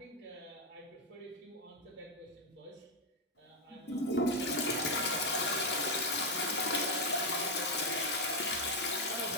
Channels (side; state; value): both; normal; correlation 0.03